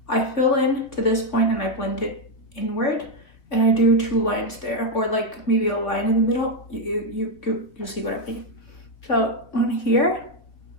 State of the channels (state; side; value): late; right; 3.4 ms